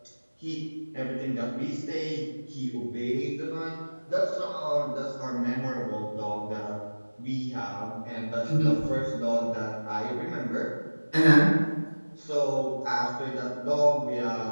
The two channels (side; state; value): both; inverted; correlation -1.00